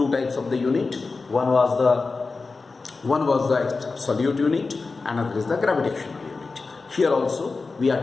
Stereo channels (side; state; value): right; quieter; 4.1 dB